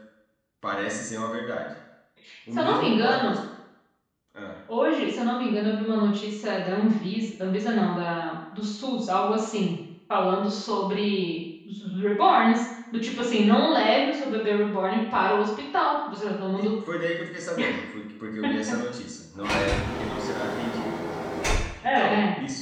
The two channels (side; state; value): both; identical; correlation 1.00